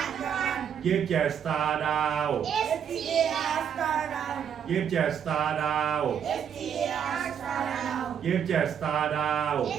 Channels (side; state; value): left; quieter; 8.3 dB